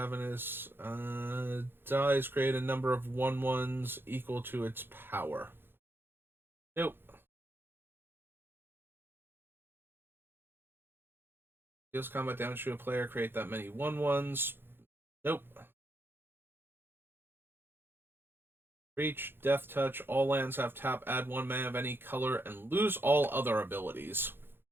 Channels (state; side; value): late; left; 0.10 ms